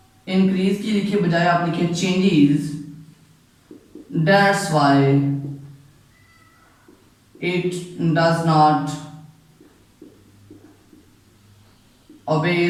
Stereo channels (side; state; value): both; identical; correlation 1.00